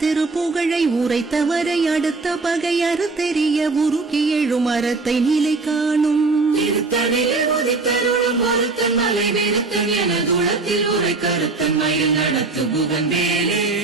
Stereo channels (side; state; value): left; quieter; 3.7 dB